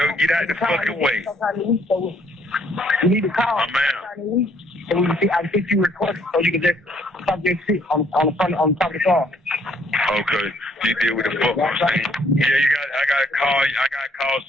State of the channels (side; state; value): both; normal; correlation 0.65